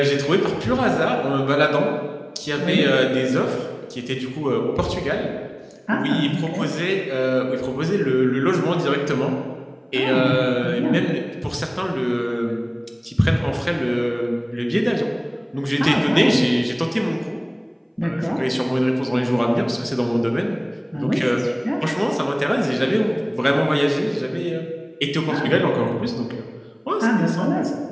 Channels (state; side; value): identical; both; correlation 1.00